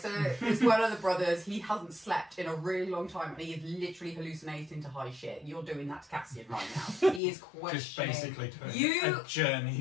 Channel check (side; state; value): right; drops out; at 7.2 s